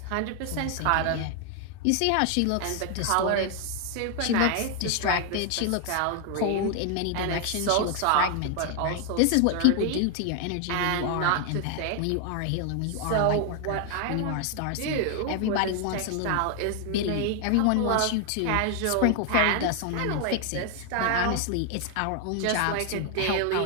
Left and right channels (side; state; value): both; different; correlation 0.00